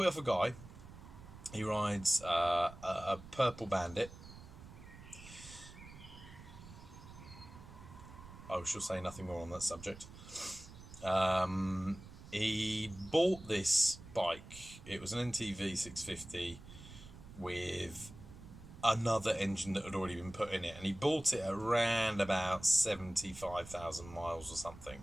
it off a guy. He rides a purple Bandit. I shall say nothing more on that subject. He bought this bike. It was an NTV 650 with another engine that had already been put in it, and he bought it around about 75,000 miles or something.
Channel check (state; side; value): noise; right; rumble, 16 dB below the sound